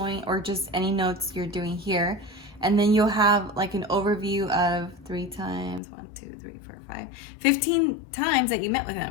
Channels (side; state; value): right; drops out; at 5.8 s